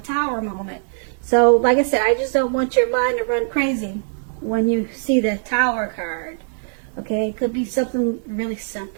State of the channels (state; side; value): silent; left; digital silence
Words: moment. So, like I said, I just don't want your mind to run crazy when you see the Tower card. Okay, it could be something really